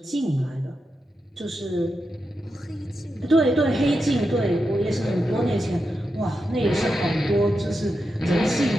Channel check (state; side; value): normal; both; correlation 0.88